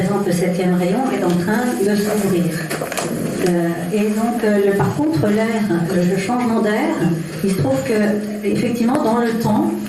le 7e rayon est en train de s'ouvrir. Et donc, par contre, l'air, le changement d'air, il se trouve que, effectivement, dans le temps,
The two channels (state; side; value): identical; both; correlation 1.00